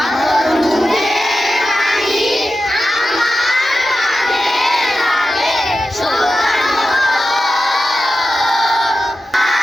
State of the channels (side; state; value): both; normal; correlation 0.92